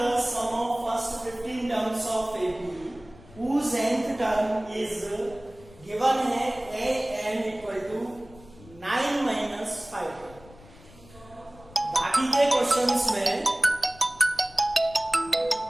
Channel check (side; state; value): left; noise; rumble, 22 dB below the sound